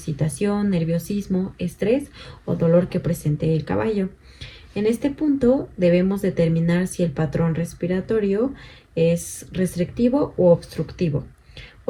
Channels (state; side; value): identical; both; correlation 1.00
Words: nerviosismo, estrés o dolor que presente el caballo. En este punto debemos determinar si el patrón respiratorio es restrictivo o obstructivo,